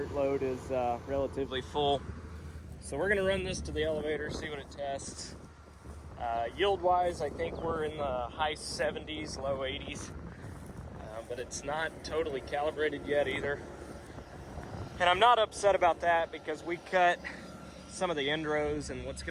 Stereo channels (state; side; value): identical; both; correlation 1.00